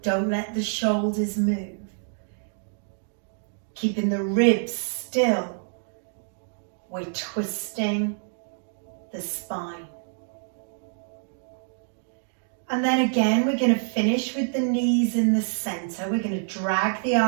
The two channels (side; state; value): left; silent; 60 dB below the other